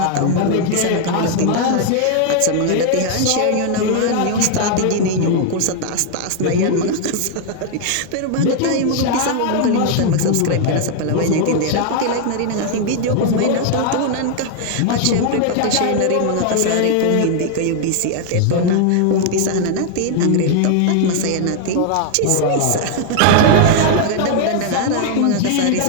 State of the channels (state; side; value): different; both; correlation 0.00